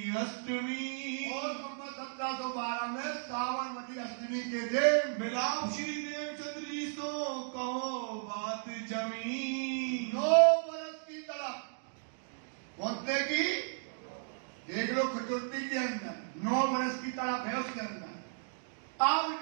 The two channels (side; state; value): left; silent; digital silence